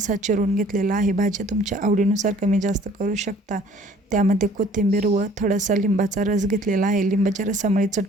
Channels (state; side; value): normal; both; correlation 0.54